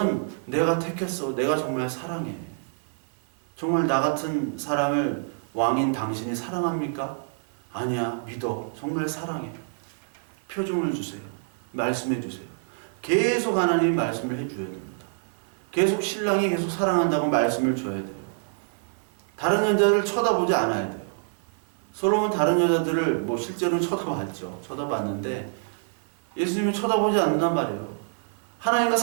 내가 택했어. 내가 정말 사랑해. 정말 나 같은 사람을 왕인 당신이 사랑합니까? 아니야. 믿어. 정말 사랑해. 표정을 주세요. 말씀해 주세요. 계속 하나님이 말씀을 해줘야 됩니다. 계속 신랑이 계속 사랑한다고 말씀을 줘야 돼요. 다른 여자들을 쳐다보지 않아야 돼요. 솔로몬 다른 여자들을 실제로는 쳐다봤죠. 쳐다봤는데 예수님이 쳐다보지 않는단 말이에요. 하나님과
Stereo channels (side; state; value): left; silent; 61 dB below the other